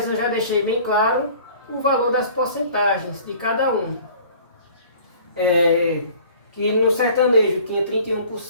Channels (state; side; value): inverted; both; correlation -0.49